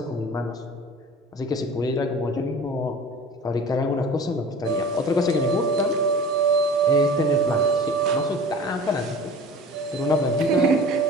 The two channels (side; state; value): both; normal; correlation 0.40